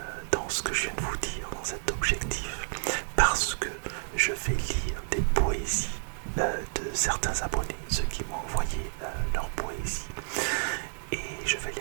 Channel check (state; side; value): silent; left; digital silence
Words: dans ce que je viens de vous dire, dans cet objectif, parce que je vais lire des poésies de certains abonnés, ceux qui m'ont envoyé leur poésie, et je vais